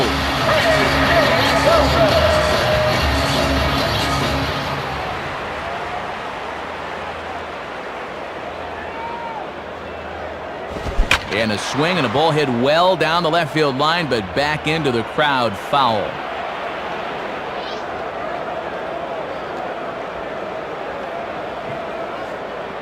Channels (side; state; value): both; identical; correlation 1.00